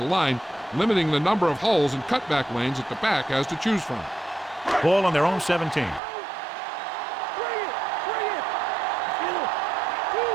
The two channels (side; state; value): left; drops out; at 6.0 s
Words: line, limiting the number of holes and cutback lanes that the back has to choose from. Ball on their own 17.